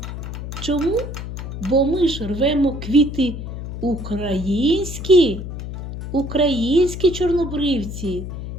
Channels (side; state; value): left; noise; hum, 7 dB below the sound